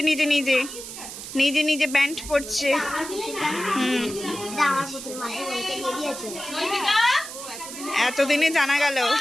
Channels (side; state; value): right; noise; hiss, 10 dB below the sound